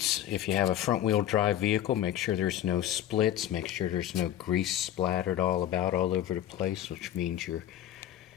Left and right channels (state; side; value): quieter; right; 11.8 dB